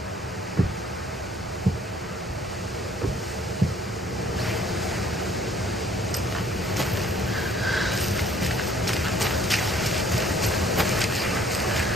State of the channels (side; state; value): both; normal; correlation 0.58